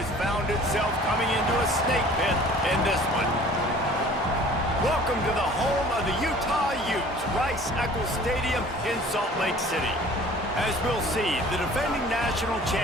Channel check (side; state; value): both; normal; correlation 0.48